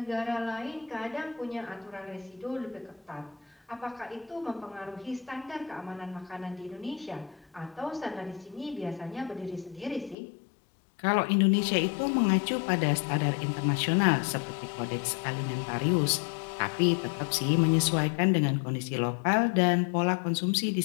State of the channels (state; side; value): drops out; right; at 10.2 s